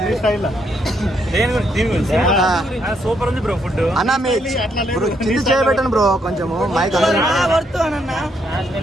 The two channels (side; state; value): both; normal; correlation 0.75